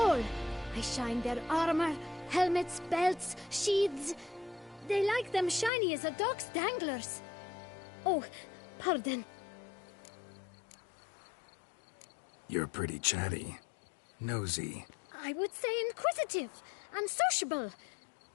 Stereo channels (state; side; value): drops out; right; at 5.7 s